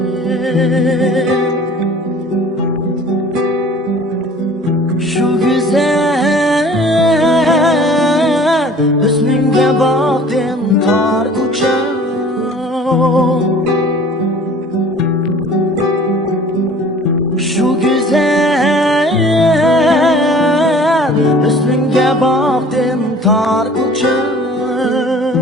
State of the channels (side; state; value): both; normal; correlation 0.48